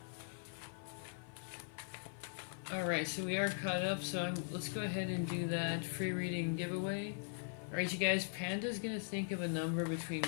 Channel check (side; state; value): right; silent; 51 dB below the other